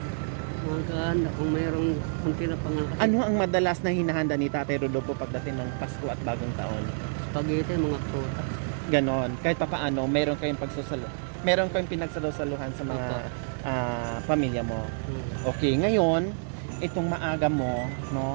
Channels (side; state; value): left; silent; digital silence